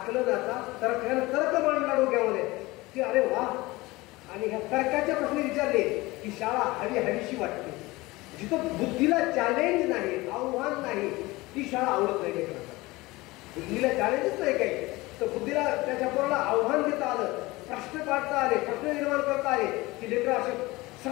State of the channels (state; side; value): quieter; right; 21.1 dB